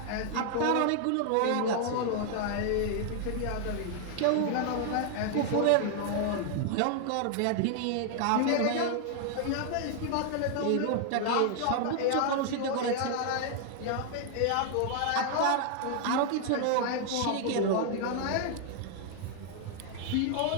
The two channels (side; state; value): both; different; correlation 0.00